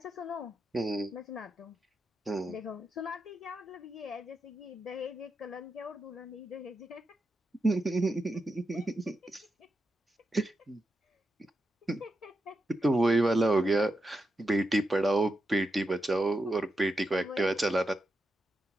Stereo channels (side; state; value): both; normal; correlation 0.87